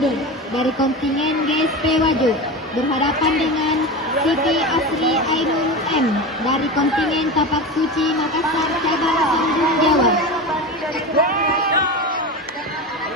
dari kontingen GSP Wajo berhadapan dengan Siti Asri Ainul M dari kontingen Tapak Suci Makassar cabang Sambung Jawa.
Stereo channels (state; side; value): normal; both; correlation 0.25